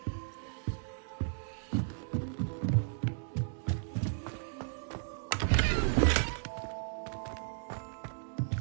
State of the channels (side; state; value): left; silent; digital silence